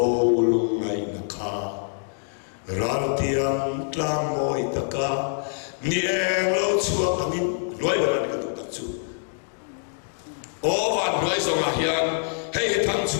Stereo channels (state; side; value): silent; right; digital silence